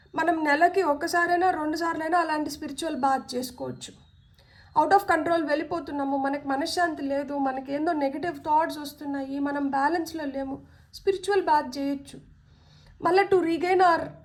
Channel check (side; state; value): both; identical; correlation 1.00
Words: మనం నెలకి ఒక్కసారైనా 2 సార్లైనా అలాంటి స్పిరిచువల్ బాత్ చేసుకోవచ్చు. అవుట్ ఆఫ్ కంట్రోల్ వెళ్ళిపోతున్నాము, మనకి మనశ్శాంతి లేదు, మనకేందో నెగిటివ్ థాట్స్ వస్తున్నాయి, మనం బ్యాలెన్స్లో లేము, స్పిరిచువల్ బాత్ చేయొచ్చు. మళ్ళీ to regain hour